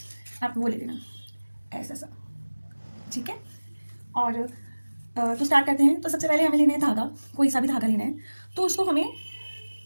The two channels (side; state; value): both; inverted; correlation -1.00